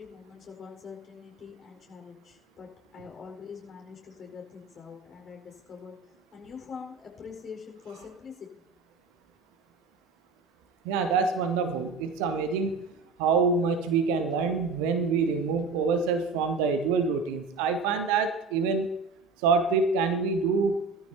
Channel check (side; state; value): left; quieter; 4.3 dB